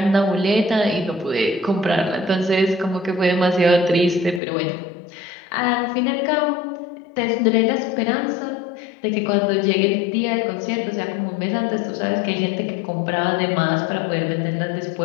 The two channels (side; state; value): right; drops out; at 4.4 s